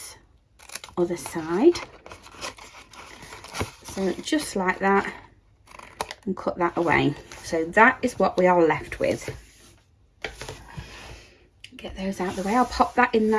other side. So just like that, and cut that away. So that is what we are left with. Get those out of the way. I'll pop that in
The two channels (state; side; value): identical; both; correlation 1.00